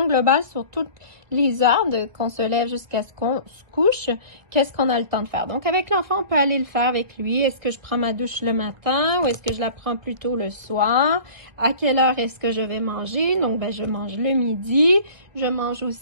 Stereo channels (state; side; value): late; left; 1.5 ms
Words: globale sur toutes les heures qu'on se lève jusqu'à ce qu'on se couche. Qu'est-ce qu'on a le temps de faire? Donc, avec l'enfant, on peut aller le faire avec lui. Est-ce que je prends ma douche le matin ou est-ce que je la prends plutôt le soir? À quelle heure est-ce que je vais manger? Donc, je mange le midi. Je mange